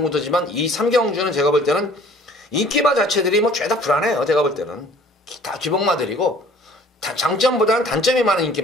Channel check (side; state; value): both; normal; correlation 0.53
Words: 구도지만 이 3경주는 제가 볼 때는 인기마 자체들이 뭐 죄다 불안해요. 제가 볼 때는. 다 기복마들이고, 장점보다는 단점이 많은